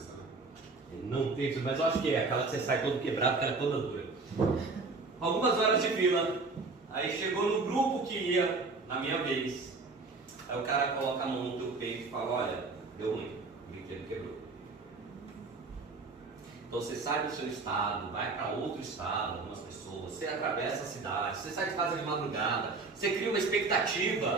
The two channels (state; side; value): quieter; left; 3.9 dB